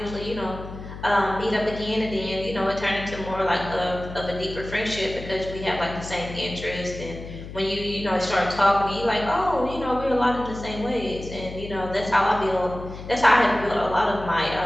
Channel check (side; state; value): left; noise; hum, 11 dB below the sound